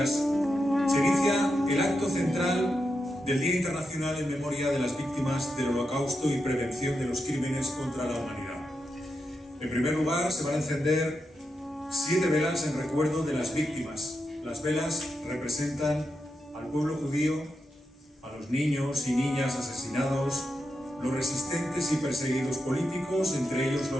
Se inicia el acto central del Día Internacional en memoria de las víctimas del Holocausto y prevención de los crímenes contra la humanidad. En primer lugar, se van a encender 7 velas en recuerdo de las víctimas. Las velas representan al pueblo judío, a los niños y niñas asesinados, los resistentes y perseguidos políticos, entre ellos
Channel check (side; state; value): both; normal; correlation 0.86